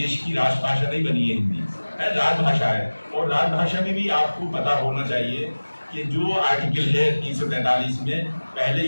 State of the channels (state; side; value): inverted; both; correlation -1.00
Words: की राजभाषा नहीं बनी है हिंदी, है राजभाषा है। और राजभाषा में भी आपको पता होना चाहिए कि जो आर्टिकल है 343 में, पहले